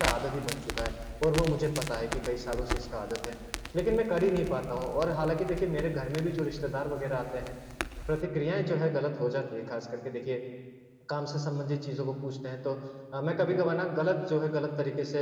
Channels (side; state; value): both; identical; correlation 1.00